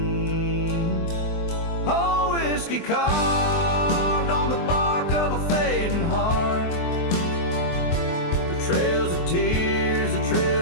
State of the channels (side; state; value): right; late; 23 ms